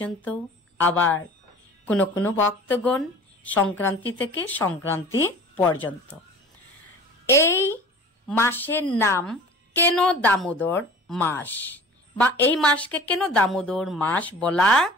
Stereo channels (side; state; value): both; normal; correlation 0.42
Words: আবার কোনো কোনো ভক্তগণ সংক্রান্তি থেকে সংক্রান্তি পর্যন্ত। এই মাসের নাম কেন দামোদর মাস, বা এই মাসকে কেন দামোদর মাস বলা